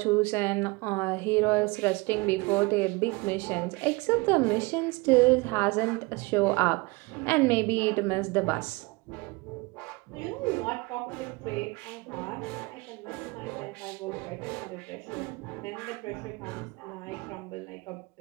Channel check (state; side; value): quieter; left; 24.9 dB